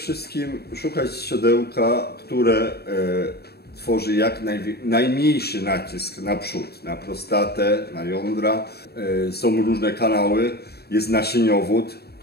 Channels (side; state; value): right; late; 0.47 ms